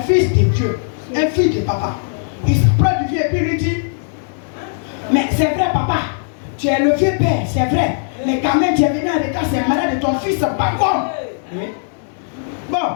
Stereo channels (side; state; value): right; silent; digital silence